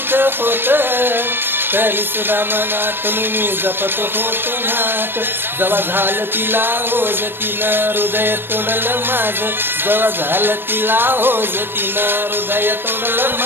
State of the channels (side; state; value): left; late; 0.10 ms